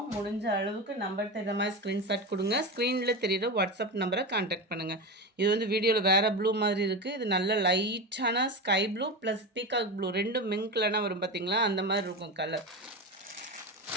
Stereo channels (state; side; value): normal; both; correlation 0.21